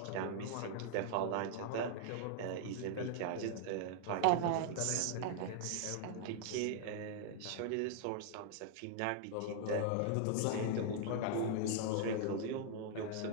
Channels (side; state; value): both; different; correlation 0.00